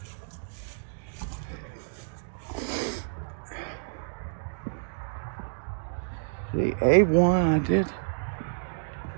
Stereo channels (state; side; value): silent; left; digital silence